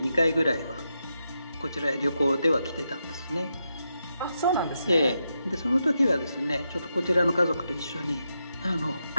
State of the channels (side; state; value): both; inverted; correlation -0.85